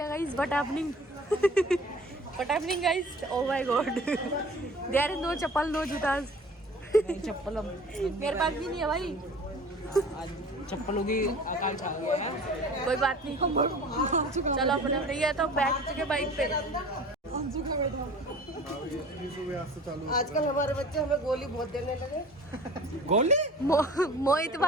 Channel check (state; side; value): normal; both; correlation 0.43